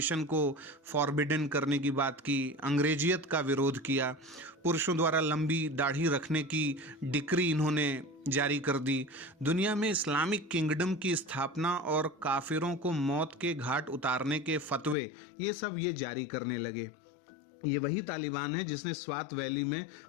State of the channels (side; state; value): right; drops out; at 15.0 s